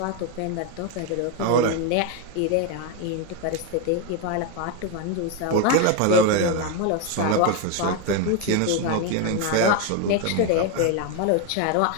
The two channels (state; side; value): different; both; correlation 0.02